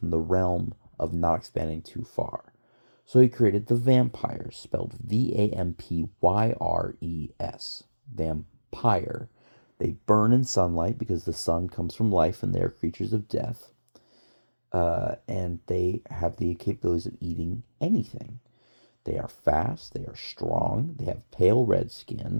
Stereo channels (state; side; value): inverted; both; correlation -1.00